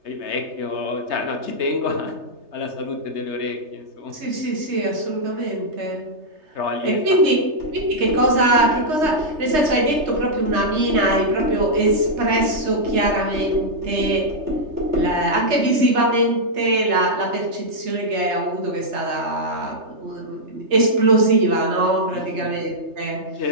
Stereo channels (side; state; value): left; late; 3.3 ms